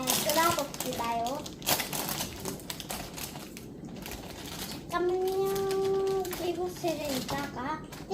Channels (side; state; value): both; identical; correlation 1.00